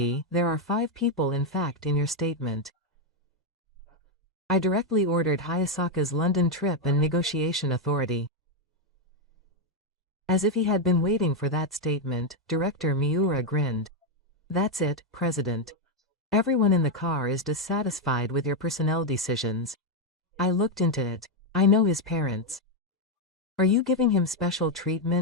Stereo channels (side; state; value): both; normal; correlation 0.03